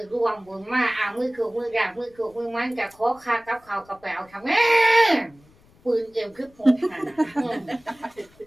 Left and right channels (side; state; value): left; noise; rumble, 30 dB below the sound